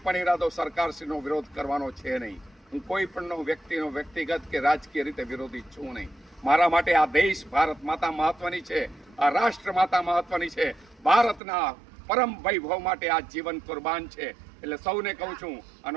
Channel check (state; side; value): drops out; left; at 11.4 s